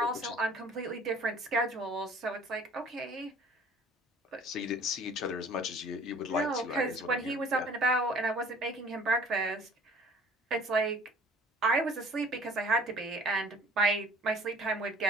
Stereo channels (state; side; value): normal; both; correlation 0.50